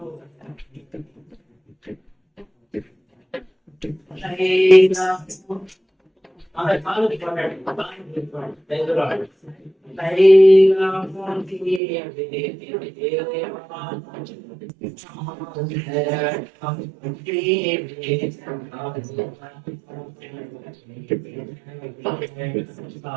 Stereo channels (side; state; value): left; drops out; at 11.8 s